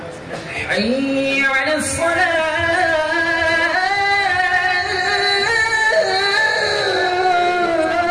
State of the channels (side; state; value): both; identical; correlation 1.00